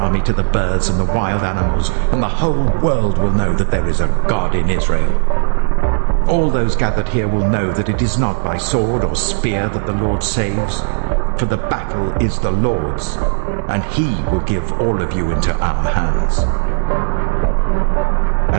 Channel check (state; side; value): silent; left; digital silence